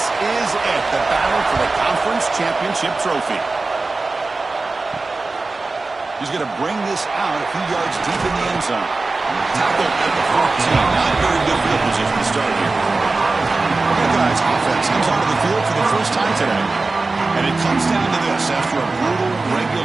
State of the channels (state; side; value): quieter; left; 3.5 dB